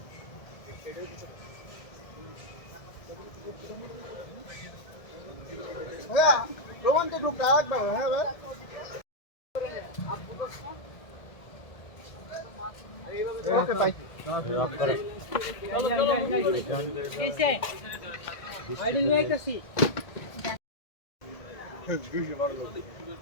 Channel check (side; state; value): right; late; 1.7 ms